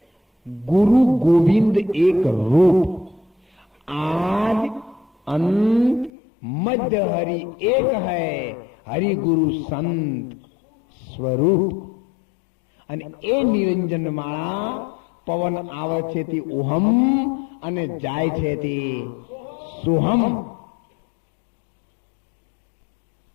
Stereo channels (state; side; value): drops out; right; at 6.1 s